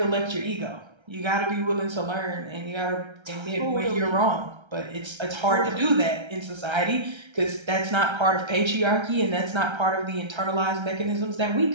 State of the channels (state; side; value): late; left; 1.3 ms